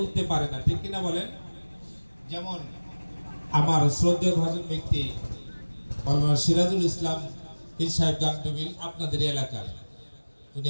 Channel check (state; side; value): inverted; both; correlation -1.00